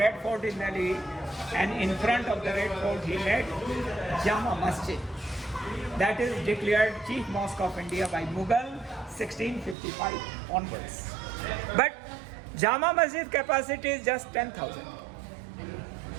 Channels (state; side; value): drops out; left; at 9.8 s